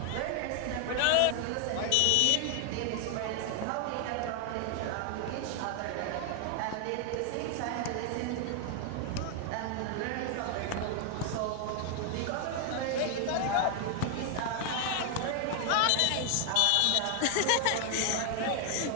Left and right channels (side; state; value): both; different; correlation 0.00